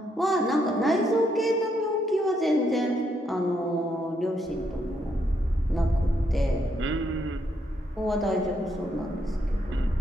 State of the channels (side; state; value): both; normal; correlation 0.76